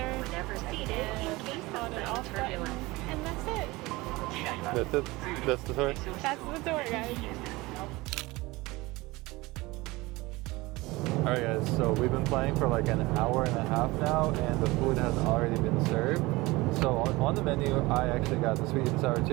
on and off button. And that's it. That's it? That's the tour? That's the tour, guys. Alright guys, so we've been playing for like an hour and a half now and the food has already been served. So on the menu, I actually got the sweet and sour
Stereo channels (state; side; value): quieter; left; 21.5 dB